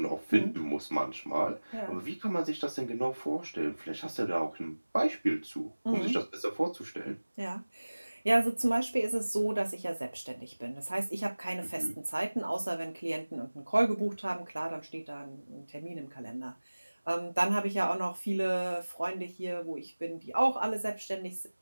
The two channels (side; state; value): both; inverted; correlation -1.00